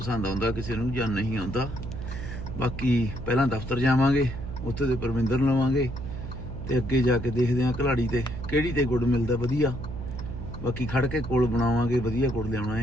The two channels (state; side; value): noise; right; hum, 8 dB below the sound